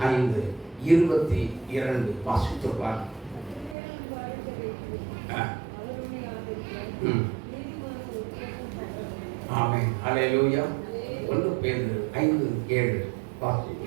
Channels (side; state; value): left; drops out; at 3.8 s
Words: வாசித்துள்ளார். ஆமென், ஹல்லேலூயா. 1 பேதுரு 5:7 வாசி.